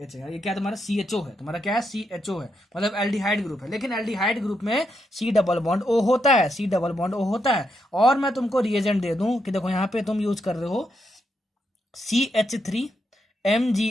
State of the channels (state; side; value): normal; both; correlation 0.81